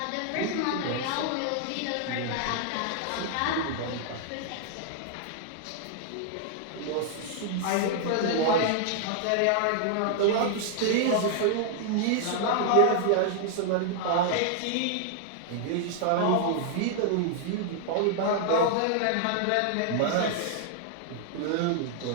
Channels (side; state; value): both; different; correlation 0.00